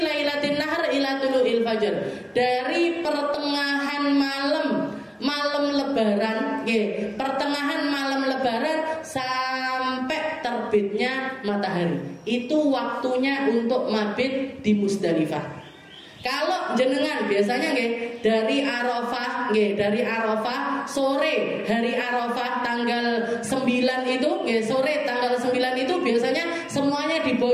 nahar ila tulu'il fajr, dari pertengahan malam lebaran, pertengahan malam lebaran sampai terbitnya matahari. Itu waktunya untuk mabit di Musdalifah. Kalau jenengan biasanya dari Arafah, sore hari Arafah tanggal 9 itu, sore tanggal 9 itu biasanya semuanya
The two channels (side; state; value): both; identical; correlation 1.00